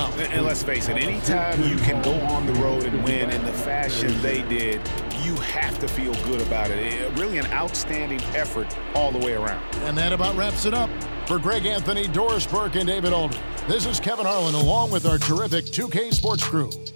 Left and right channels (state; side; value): inverted; both; correlation -1.00